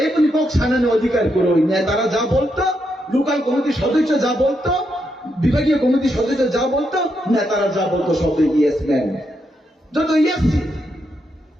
কোন পক্ষ সানানোর অধিকার করো, নেতারা যা বলতো, লোকাল কমিটির সদস্য যা বলতো, বিভাগীয় কমিটির সদস্য যা বলতো, নেতারা যা বলতো সব ইয়েস ম্যান, যত ইয়েস।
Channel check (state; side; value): normal; both; correlation 0.81